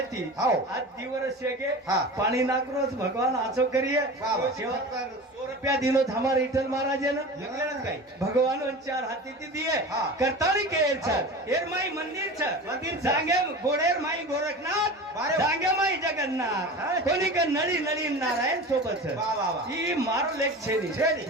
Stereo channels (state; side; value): normal; both; correlation 0.33